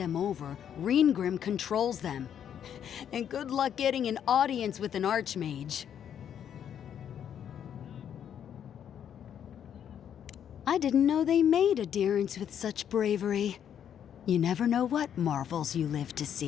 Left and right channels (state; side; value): quieter; right; 9.1 dB